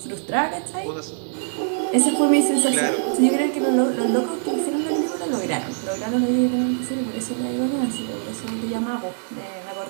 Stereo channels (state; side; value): silent; left; 63 dB below the other